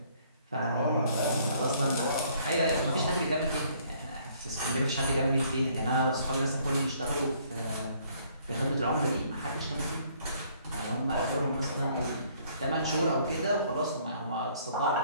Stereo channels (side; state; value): both; inverted; correlation -0.63